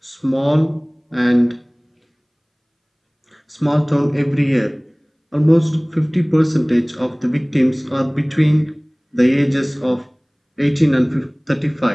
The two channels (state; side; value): identical; both; correlation 1.00